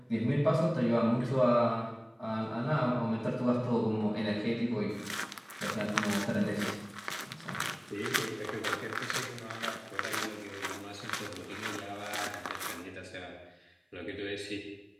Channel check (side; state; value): both; identical; correlation 1.00